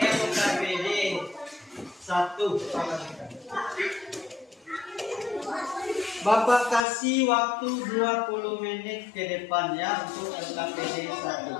1. Bapak kasih waktu 20 menit ke depan ya untuk LKPD 1.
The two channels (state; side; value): drops out; right; at 6.8 s